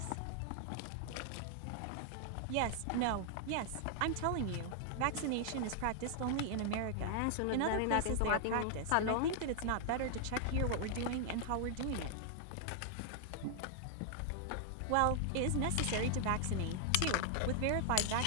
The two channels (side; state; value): both; different; correlation 0.00